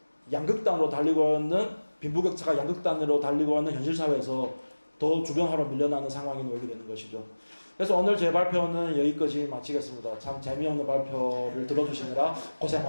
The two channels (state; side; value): inverted; both; correlation -1.00